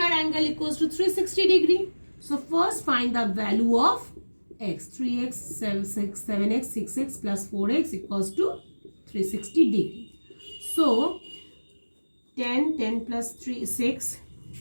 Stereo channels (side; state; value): both; inverted; correlation -1.00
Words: angle equals to 360 degree. So first find the value of x. 3x, 7x, 6x plus 4x equals to 360 degree. So 10 plus 3, 6.